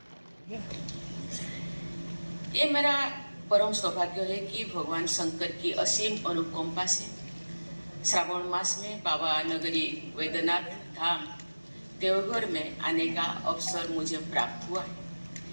ये मेरा परम सौभाग्य है कि भगवान शंकर की असीम अनुकंपा से श्रावण मास में बाबा नगरी वैद्यनाथ धाम देवघर में आने का अवसर मुझे प्राप्त हुआ है।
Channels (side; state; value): both; inverted; correlation -1.00